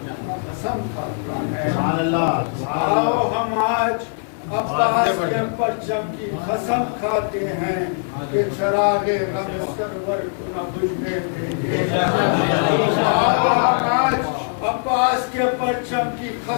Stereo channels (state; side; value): silent; right; 65 dB below the other